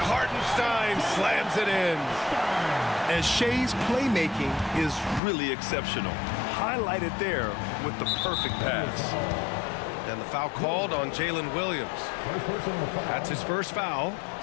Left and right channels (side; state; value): right; drops out; at 5.2 s